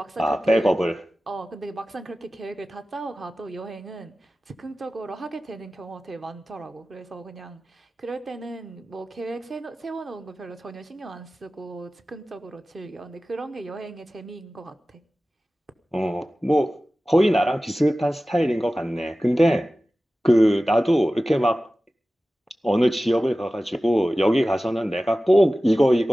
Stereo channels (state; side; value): normal; both; correlation 0.96